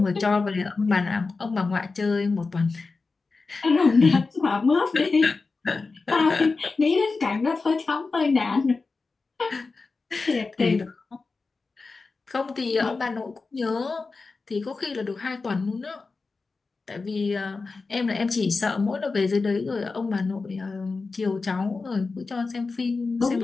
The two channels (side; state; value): right; quieter; 4.1 dB